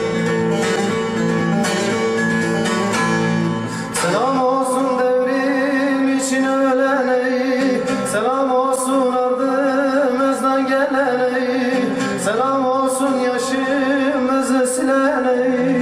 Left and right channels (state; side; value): identical; both; correlation 1.00